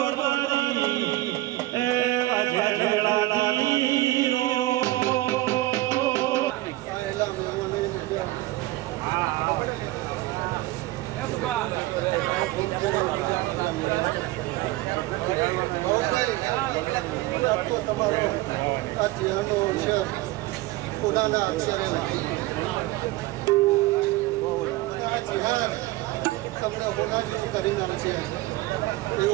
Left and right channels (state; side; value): quieter; left; 18.5 dB